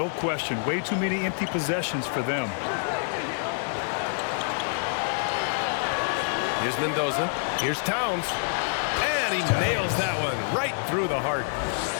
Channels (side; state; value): right; silent; digital silence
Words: question. Way too many empty possessions for them. Here's Mendoza. Here's Towns. And he nails that one right through the heart.